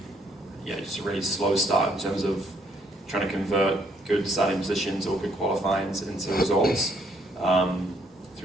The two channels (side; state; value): both; normal; correlation 0.69